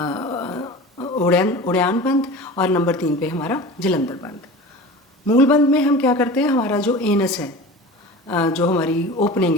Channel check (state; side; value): normal; both; correlation 0.35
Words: उड़ान बंध और नंबर 3 पे हमारा जलंधर बंध। मूल बंध में हम क्या करते हैं, हमारा जो एनस है, जो हमारी ओपनिंग